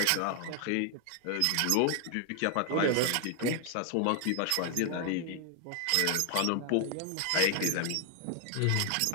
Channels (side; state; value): both; different; correlation 0.00